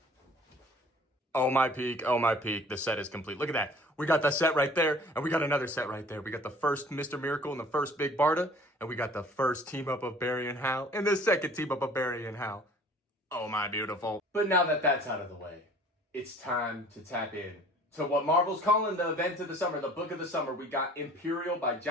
Oh my peak, the set is complete. Look at that. We got the set right there, and we got another set right there. We got the first Mr. Miracle and the first Big Barda, and we got the first team up of Barry and Hal, and the second team up of Barry and Hal. Oh my beautiful. But now that that's out of the way, it's time to tap in to what Marvel's calling the event of the summer, the book of the summer. We got Imperial by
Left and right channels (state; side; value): normal; both; correlation 0.50